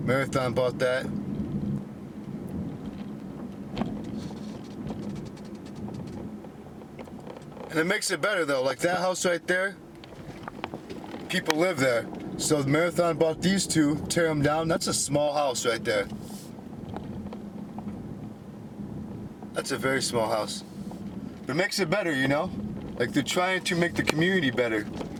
bought that. And it makes it better though, like that house right there, people live there. So the Marathon bought these two, tear them down. That's a small house right there. That's a very small house. But it makes it better, you know? Like they're trying to make the community better.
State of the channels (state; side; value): identical; both; correlation 1.00